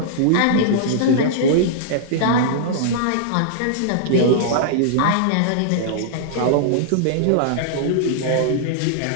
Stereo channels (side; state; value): both; different; correlation -0.01